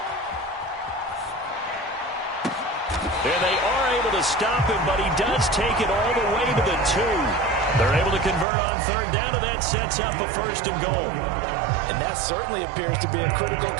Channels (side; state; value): left; drops out; at 8.5 s